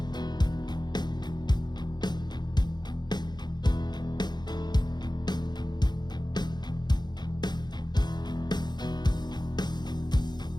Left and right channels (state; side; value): late; right; 0.21 ms